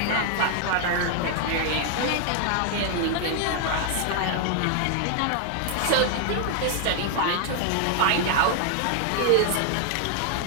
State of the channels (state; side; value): different; both; correlation 0.00